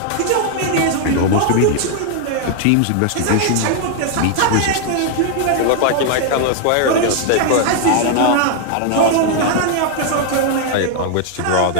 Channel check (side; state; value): both; different; correlation 0.00